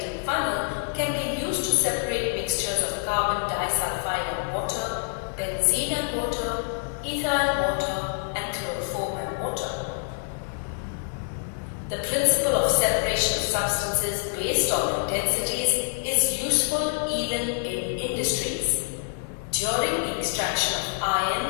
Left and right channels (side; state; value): right; silent; 61 dB below the other